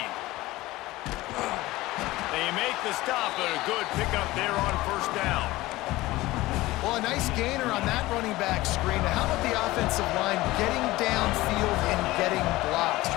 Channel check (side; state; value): right; quieter; 18.6 dB